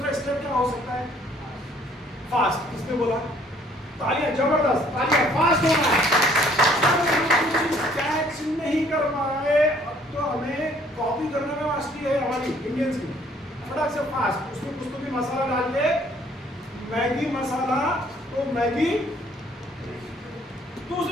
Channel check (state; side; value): normal; both; correlation 0.60